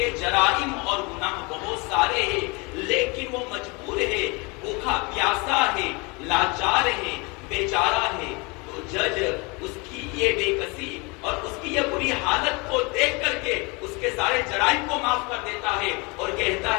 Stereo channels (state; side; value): quieter; right; 28.2 dB